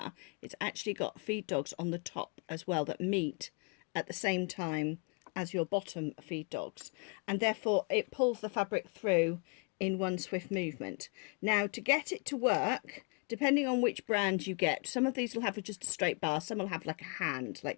it's actually got feed dogs on the top as well that meet at the same time as your bottom feed dogs, and therefore it pulls the fabric through in one swift movement. Now to get it to work, depending on which brand you get, some of these will have just a straight bar, some will have like a hand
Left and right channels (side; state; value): right; quieter; 34.2 dB